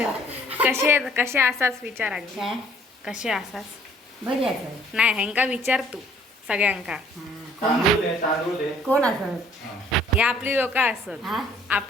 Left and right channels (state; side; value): normal; both; correlation 0.59